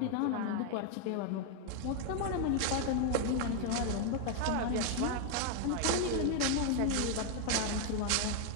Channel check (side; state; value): both; different; correlation 0.00